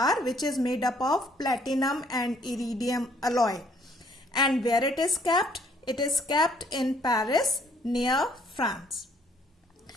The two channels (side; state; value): both; normal; correlation 0.63